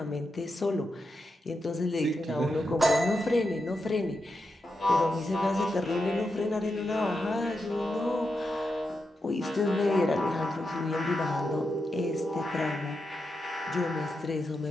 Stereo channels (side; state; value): both; normal; correlation 0.87